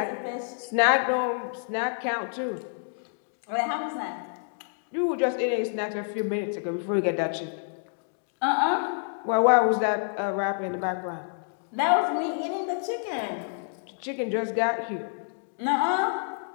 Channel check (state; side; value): silent; right; digital silence